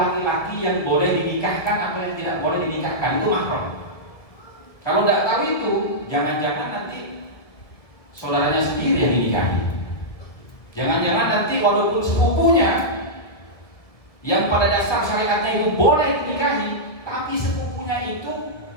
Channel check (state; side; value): late; right; 2.0 ms